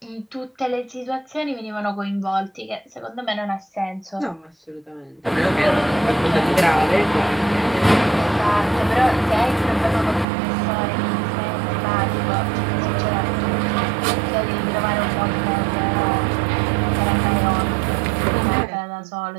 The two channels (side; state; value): left; drops out; at 10.2 s